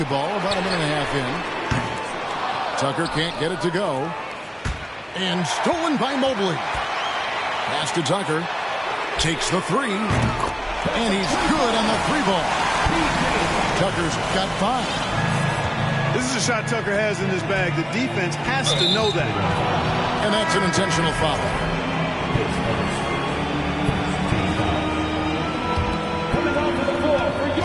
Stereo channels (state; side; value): identical; both; correlation 1.00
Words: about a minute and a half in. Tucker can't get it to go. And stolen by Mobley. Pass to Tucker. Takes the three. And he's good on the three ball. Tucker's got 5. This is a shot Tucker has in his bag. The defense has to know that. And that's an intentional foul. Coming onto the floor for